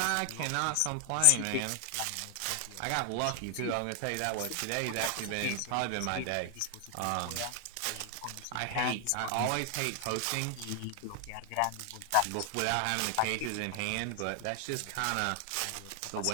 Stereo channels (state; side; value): different; both; correlation 0.00